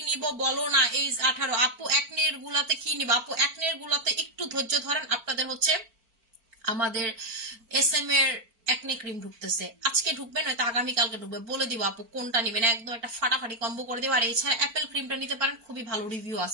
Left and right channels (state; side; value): late; left; 4.5 ms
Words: নিব বলো না? এই 18। আপু একনের গুলাতে কি নিব? আপু একনের গুলাতে একটু ধৈর্য ধরেন, আপনাদের হচ্ছে আমাদের SM এর একনে ক্রিম ঢুকতেছে, আজকে ঢুকবে নয়তো আগামীকালকে ঢুকবে, বলে দিব আপু কোনটা নিবেন, একদম একটা ফাটাফাটি কম্বো করে দেবো। আর এছাড়া অ্যাপেল ক্রিমটা নিতে পারেন, খুবই ভালো রিভিউ